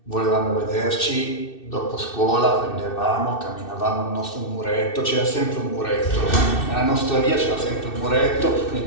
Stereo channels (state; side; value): late; right; 2.6 ms